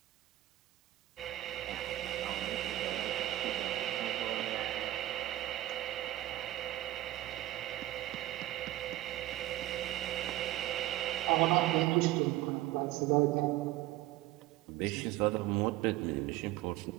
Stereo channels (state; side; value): quieter; left; 15.4 dB